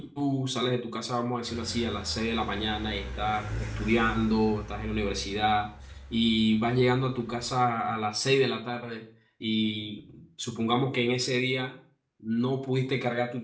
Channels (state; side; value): identical; both; correlation 1.00